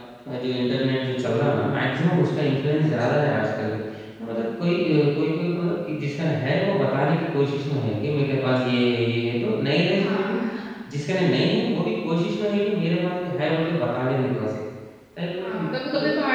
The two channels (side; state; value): both; identical; correlation 1.00